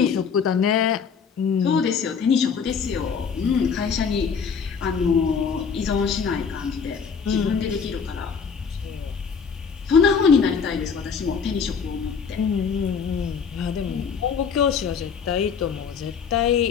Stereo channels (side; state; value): right; quieter; 6.2 dB